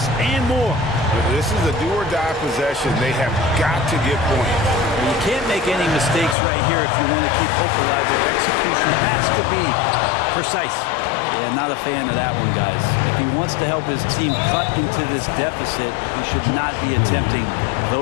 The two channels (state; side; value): drops out; right; at 6.4 s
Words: and more. This is a do-or-die possession. They have got to get points. You can't make any mistakes right here if you want to keep hope alive. Their execution has to be precise. Yeah, not a fan of that one, guys. If he wants to help his team cut into this deficit, he should not be attempting